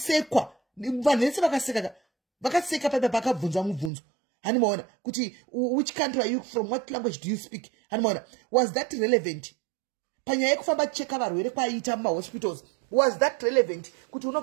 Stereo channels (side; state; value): left; drops out; at 3.9 s